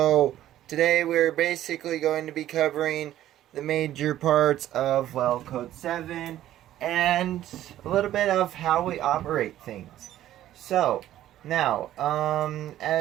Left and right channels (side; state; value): left; quieter; 12.9 dB